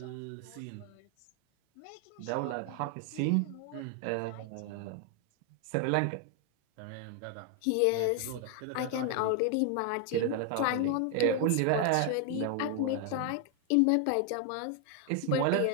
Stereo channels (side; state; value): both; different; correlation 0.00